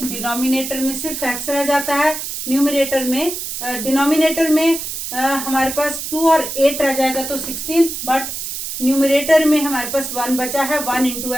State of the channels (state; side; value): noise; right; hiss, 6 dB below the sound